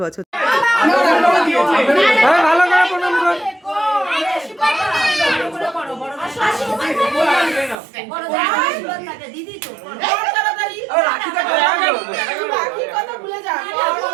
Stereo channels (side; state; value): left; drops out; at 7.8 s